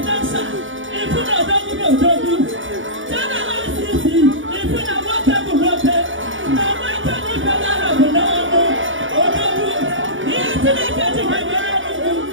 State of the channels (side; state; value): left; late; 0.57 ms